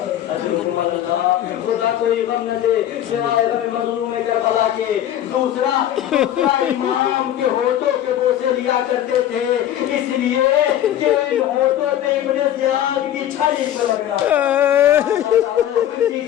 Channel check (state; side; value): quieter; right; 11.5 dB